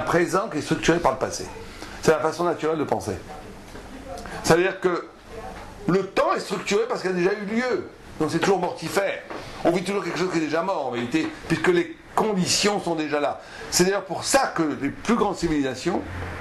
présent qui est structuré par le passé. C'est la façon naturelle de penser. C'est-à-dire que le temps est structuré parce qu'il a déjà eu lieu. Donc c'est toujours mortifère. On vit toujours quelque chose qui est déjà mort en vérité, puisque les conditions sont déjà là. C'est d'ailleurs pour ça que les plus grandes civilisations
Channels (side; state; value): both; identical; correlation 1.00